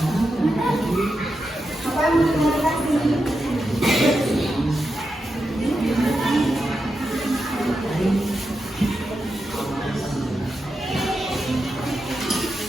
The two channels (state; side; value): normal; both; correlation 0.88